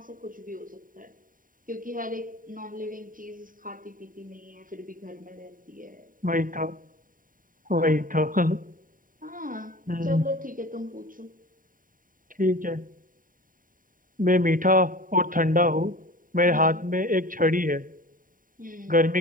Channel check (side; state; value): left; late; 0.40 ms